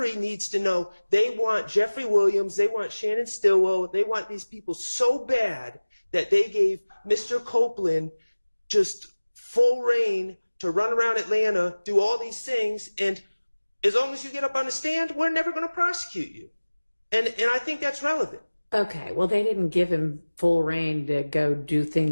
needs to know they want Jeffrey Williams, they want Shannon Stillwell, they want these people so bad that they gave Mr. Copeland just full reign to run around Atlanta, do all these things, and as long as you get up on the stand, we're never going to prosecute you. And I think that's relevant. Okay, well, they didn't give him full reign to go do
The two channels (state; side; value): inverted; both; correlation -1.00